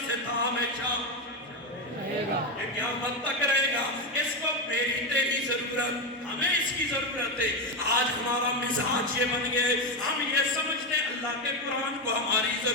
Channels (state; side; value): normal; both; correlation 0.11